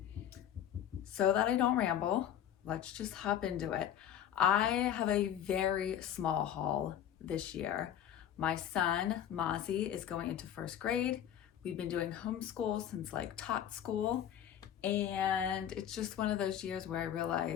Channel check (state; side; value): quieter; right; 10.1 dB